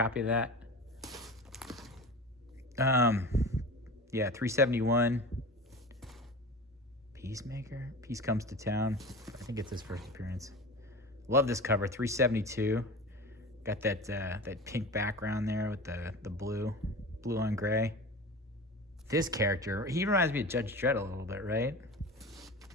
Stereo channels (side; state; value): both; normal; correlation 0.33